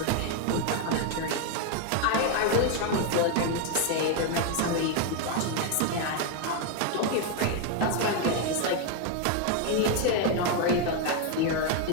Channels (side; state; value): both; different; correlation 0.01